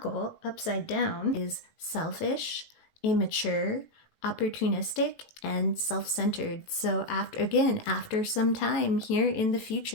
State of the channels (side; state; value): right; late; 18 ms